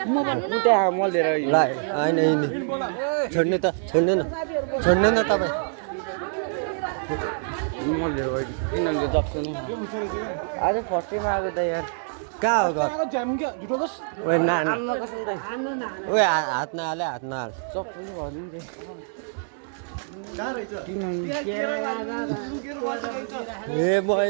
उता मल लिएर ल हैन हैन छोड्नु त छोड्नु न तपाई मल लिएर गयो किन अन्त जस्तो नि आज फर्स्ट टाइम आएको त यार कहाँ हो घर जाम के झुटो दस ओए ना ना आम्न कसम त ओए हात नहाले हात नहाल चप्पल भर्नु नि कहाँ रहेछ ए म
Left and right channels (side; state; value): left; silent; digital silence